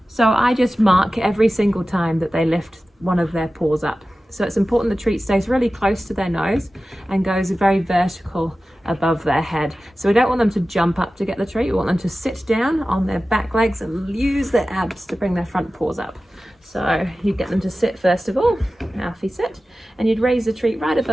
So I just mark every single time that they lift one of their paws up. So it's important the treat stays really close to their nose and goes very vertical above their head. So we don't want them to jump up to get the treat. We want them to sit down on their back legs and use their abs to bring their front paws up. So you get them to sit first of all. Alfie, sit. And you'd raise the treat right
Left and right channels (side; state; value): both; normal; correlation 0.95